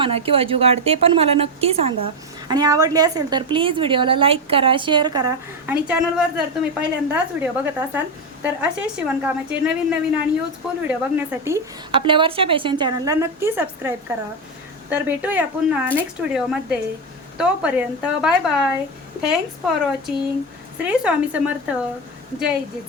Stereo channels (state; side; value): normal; both; correlation 0.10